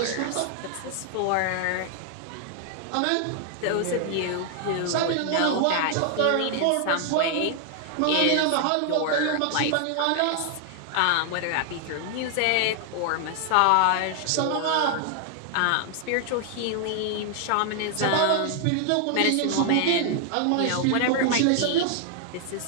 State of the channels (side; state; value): both; different; correlation 0.00